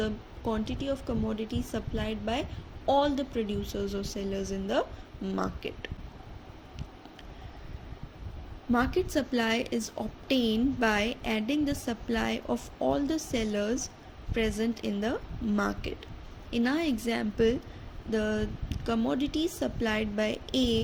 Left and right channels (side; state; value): both; identical; correlation 1.00